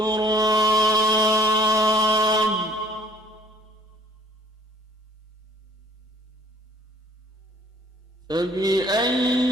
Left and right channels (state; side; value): normal; both; correlation 0.57